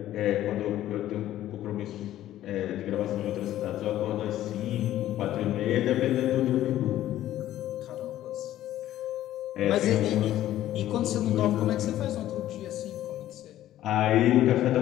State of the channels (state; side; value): quieter; right; 13.3 dB